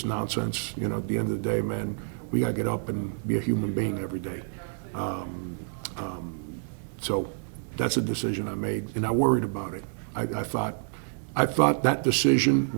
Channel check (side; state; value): left; silent; digital silence